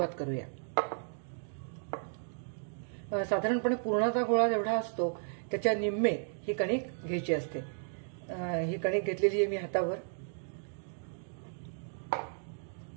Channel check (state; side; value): silent; left; digital silence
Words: करूया. साधारणपणे पुरणाचा गोळा जेवढा असतो त्याच्या निम्मे ही कणिक घ्यायची असते. ही कणिक घेतलेली आहे मी हातावर.